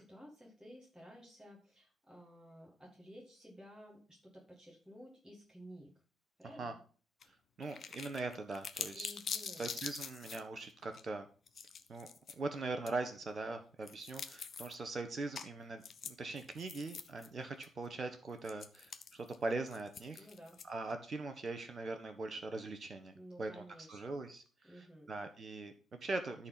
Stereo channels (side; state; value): both; normal; correlation 0.82